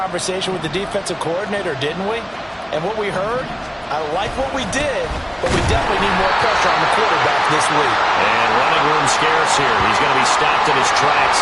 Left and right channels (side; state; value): both; identical; correlation 1.00